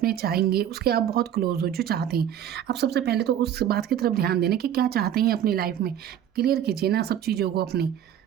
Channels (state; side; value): quieter; left; 10.0 dB